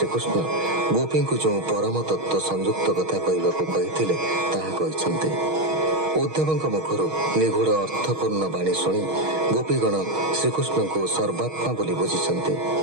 गोपी को जो परम तत्व संयुक्त कथा कहते उद्धव मुखर निगूढ़ अर्थपूर्ण बाणी शुणी गोपीगण श्रीकृष्ण को सर्वात्मा बोली बुझी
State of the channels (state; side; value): late; left; 6.4 ms